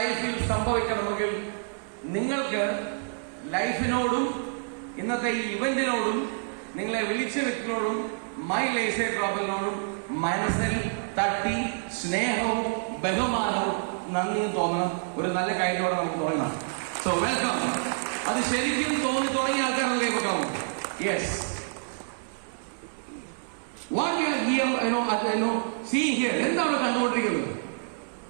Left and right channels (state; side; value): silent; left; digital silence